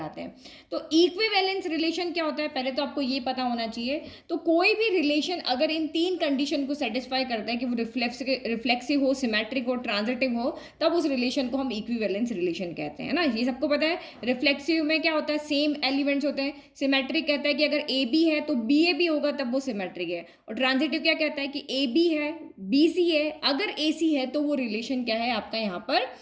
हैं। तो इक्विवेलेंस रिलेशन क्या होता है पहले तो आपको ये पता होना चाहिए। तो कोई भी रिलेशन अगर इन 3 कंडीशन को सेटिस्फाई करता है कि वो रिफ्लेक्सिव हो, सिमेट्रिक हो, ट्रांजिटिव हो, तब उस रिलेशन को हम इक्विवेलेंस रिलेशन कहते हैं ना। ये सबको पता है। रिफ्लेक्सिव में क्या होता है, सेम एलिमेंट्स होते हैं। सिमेट्रिक कहता है कि अगर ए बी है तो बी ए भी होगा तब वो सिमेट्रिक है। और ट्रांजिटिव क्या कहता है कि ए बी है, बी सी है, अगर ए सी है तो वो रिलेशन क्या है आपका यहाँ पर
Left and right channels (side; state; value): both; identical; correlation 1.00